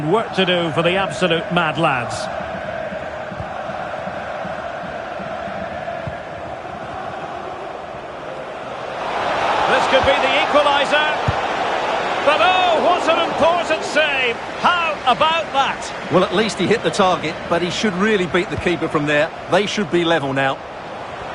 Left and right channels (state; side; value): identical; both; correlation 1.00